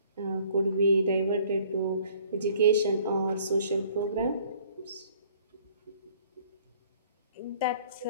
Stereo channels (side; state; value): both; inverted; correlation -0.57